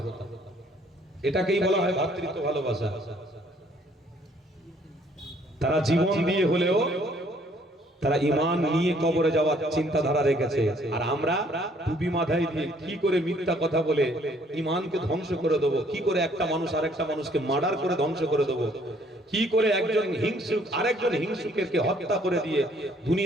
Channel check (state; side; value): normal; both; correlation 0.62